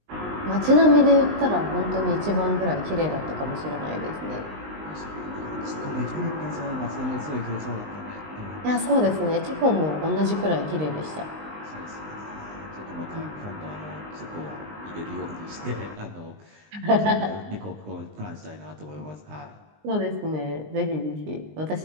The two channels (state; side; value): late; left; 19 ms